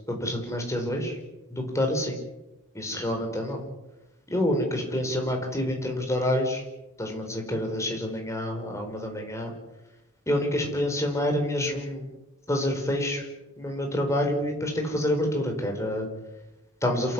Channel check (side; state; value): both; normal; correlation 0.56